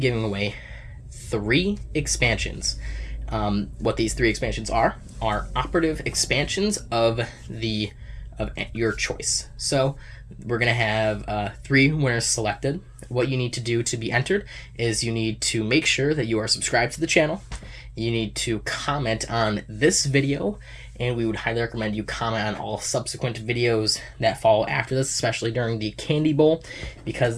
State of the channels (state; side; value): identical; both; correlation 1.00